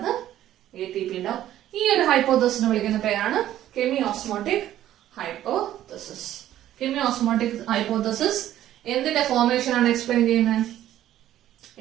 ATP ഉണ്ടാവും. ഈ ഒരു ഹൈപ്പോതെസിനെ വിളിക്കുന്ന പേരാണ് കെമിയോസ്മോട്ടിക് ഹൈപ്പോതെസിസ്. കെമിയോസ്മോട്ടിക് ഹൈപ്പോതെസിസ് എന്തിന്റെ ഫോർമേഷൻ ആണ് എക്സ്പ്ലെയിൻ ചെയ്യുന്നത്?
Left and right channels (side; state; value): left; quieter; 12.6 dB